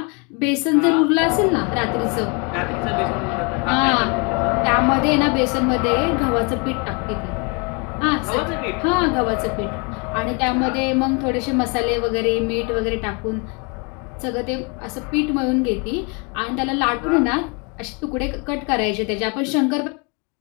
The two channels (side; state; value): right; quieter; 32.8 dB